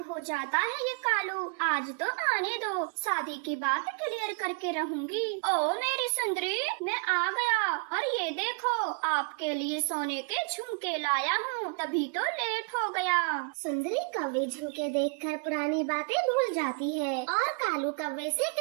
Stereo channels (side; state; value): left; quieter; 36.4 dB